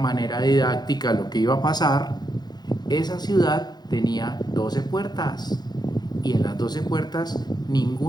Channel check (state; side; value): late; right; 0.20 ms